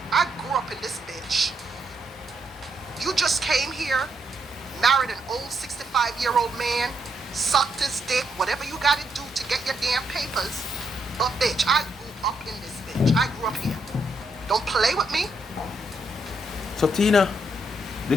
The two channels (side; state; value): both; normal; correlation 0.77